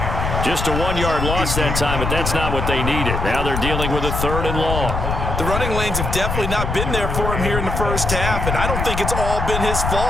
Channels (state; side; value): noise; left; rumble, 2 dB below the sound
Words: Just a 1-yard loss that time, but that's not what they needed. Now they're dealing with a 3rd and long. The running lanes have definitely not been there for him here in the first half, and I don't think it's all been his